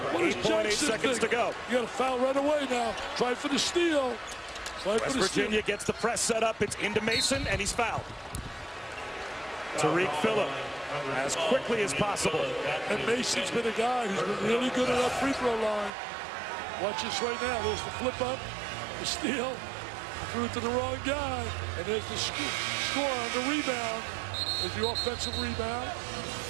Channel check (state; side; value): drops out; left; at 15.9 s